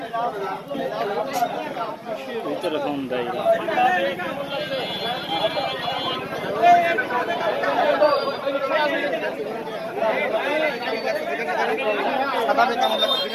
ভিতরে ফোন দেয়।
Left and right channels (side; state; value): both; identical; correlation 1.00